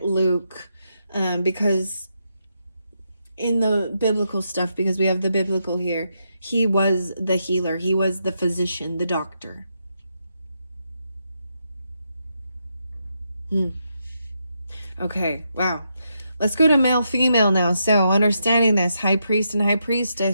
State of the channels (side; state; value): both; inverted; correlation -0.82